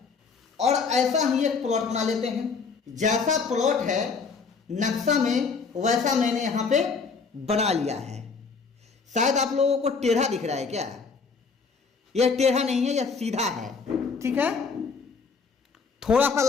और ऐसा ही एक प्लॉट बना लेते हैं। जैसा प्लॉट है नक्शा में, वैसा मैंने यहाँ पे बना लिया है। शायद आप लोगों को टेढ़ा दिख रहा है क्या? यह टेढ़ा नहीं है, यह सीधा है, ठीक है। थोड़ा सा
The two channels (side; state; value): right; quieter; 5.0 dB